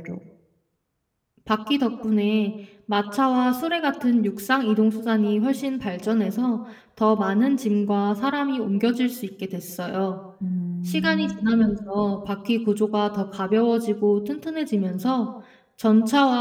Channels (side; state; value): both; identical; correlation 1.00